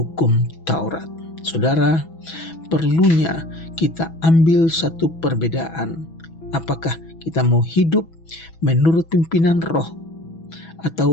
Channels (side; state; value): right; late; 6.1 ms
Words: Taurat. Saudara, perlunya kita ambil satu perbedaan. Apakah kita mau hidup menurut pimpinan roh